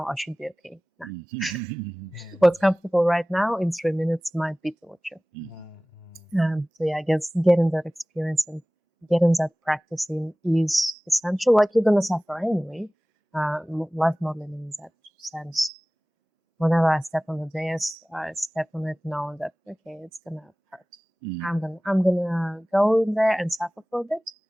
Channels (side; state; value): both; normal; correlation 0.98